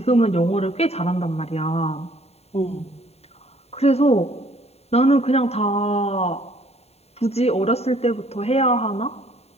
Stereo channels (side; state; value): right; late; 0.30 ms